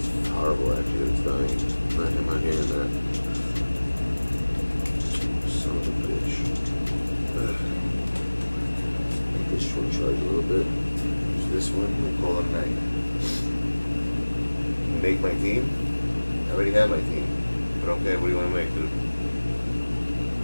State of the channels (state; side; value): inverted; both; correlation -1.00